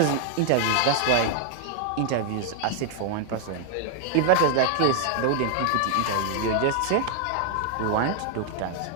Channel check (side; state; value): both; different; correlation 0.00